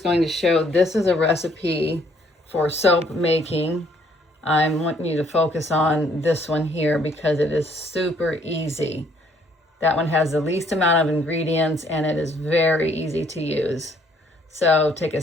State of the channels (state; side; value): normal; both; correlation 0.65